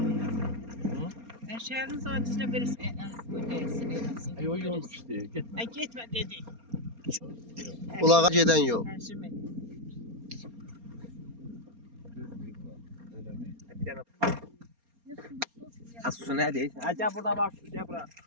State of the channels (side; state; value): left; late; 4.3 ms